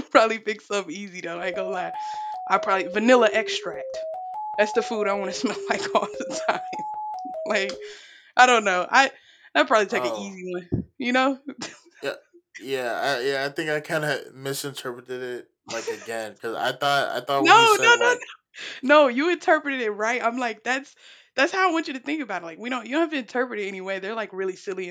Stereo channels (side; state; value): both; identical; correlation 1.00